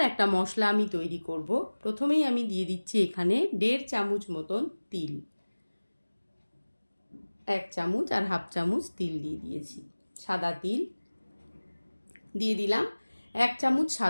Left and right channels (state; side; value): inverted; both; correlation -1.00